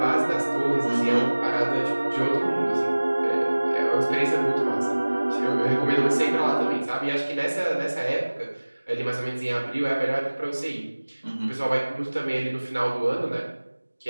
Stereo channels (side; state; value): both; inverted; correlation -1.00